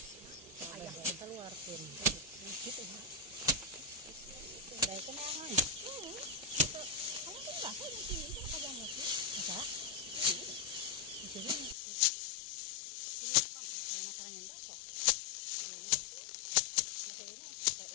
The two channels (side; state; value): right; drops out; at 11.8 s